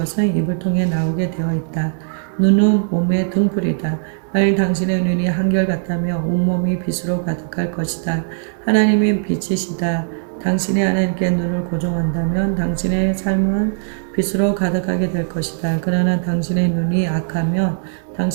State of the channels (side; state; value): left; silent; 67 dB below the other